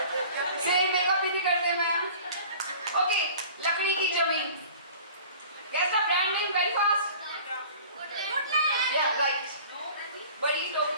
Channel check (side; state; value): both; inverted; correlation -0.44